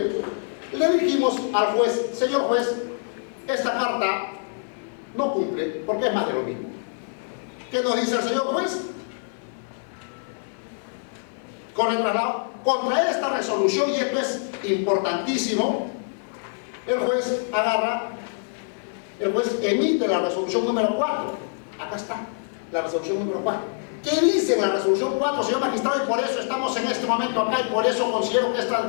le dijimos al juez, señor juez, esta carta no cumple porque es más de lo mismo. ¿Qué nos dice el señor juez? Con el traslado, contra esta resolución, y esto es importantísimo, el juez emite la resolución número 4. Acá está, la resolución número 4. ¿Qué dice en la resolución 4, señor magistrado? Y por eso estamos en este momento acá, y por eso considero que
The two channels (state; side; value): silent; right; digital silence